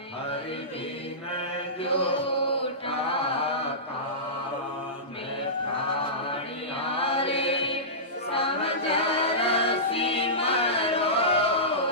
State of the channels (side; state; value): both; normal; correlation -0.19